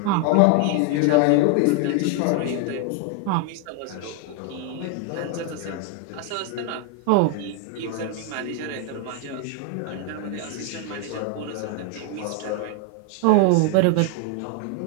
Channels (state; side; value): different; both; correlation 0.01